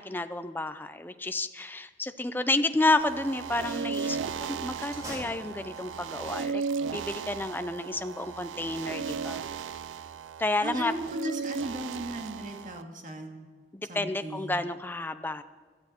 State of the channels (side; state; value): both; normal; correlation 0.47